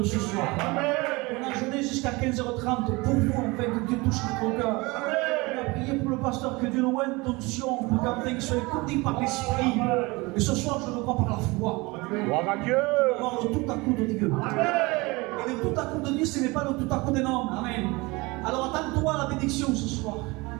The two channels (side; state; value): left; quieter; 24.1 dB